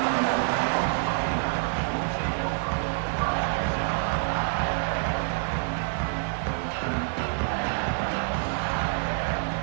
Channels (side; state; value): left; silent; 60 dB below the other